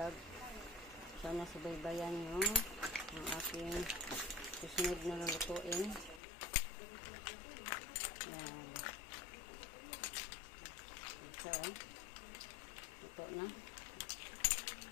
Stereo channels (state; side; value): drops out; right; at 6.2 s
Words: Sana subaybayan nyo ang aking susunod na lulutuin. Yan. Isa o. Luto na.